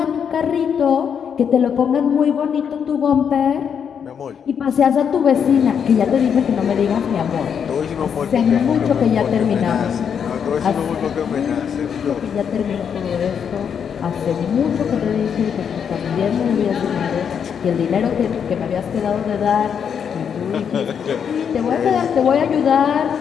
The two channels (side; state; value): right; quieter; 7.5 dB